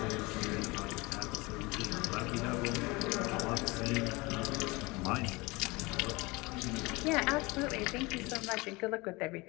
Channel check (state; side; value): quieter; right; 24.3 dB